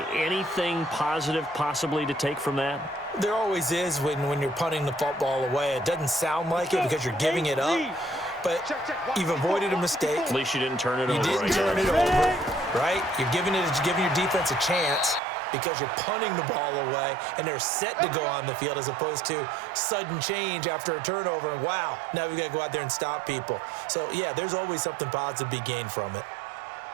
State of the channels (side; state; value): left; drops out; at 15.2 s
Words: Anything positive possibly to take from that? There always is when you're punting the football away. It doesn't sound like it because you're giving it up. But you've avoided a mistake. At least you didn't turn it over. You didn't turn it over, right? You're giving your defense a chance because you're punting the ball away, and they're set to go on the field as opposed to sudden change after a turnover. And wow, now we've got to go out there and stop people. So, yeah, there's always something positive to be gained from it.